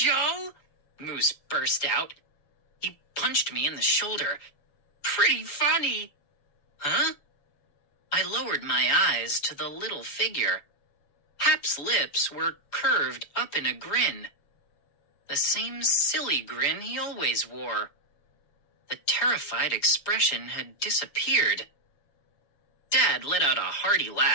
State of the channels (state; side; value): late; right; 7.1 ms